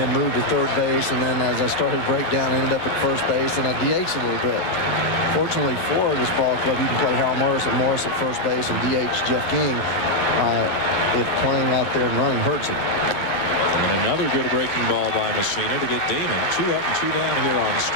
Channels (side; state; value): right; late; 11 ms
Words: moved to third base, and then as I started to break down, ended up at first base, and I DH'd a little bit. Fortunately for this ball club, you can play Harold Morris at first base and DH Jeff King if playing out there and running hurts it. And another good breaking ball by Messina to get Damon 2 up and 2 down here on